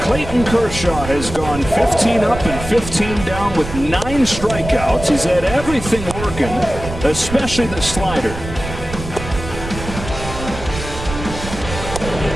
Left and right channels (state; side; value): noise; right; rumble, 9 dB below the sound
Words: Kershaw has gone 15 up and 15 down with 9 strikeouts. He's had everything working, especially the slider.